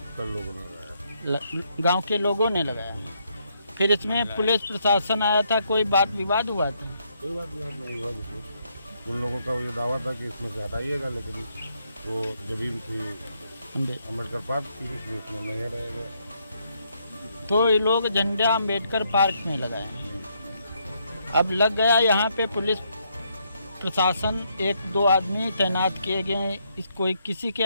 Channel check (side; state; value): both; inverted; correlation -0.75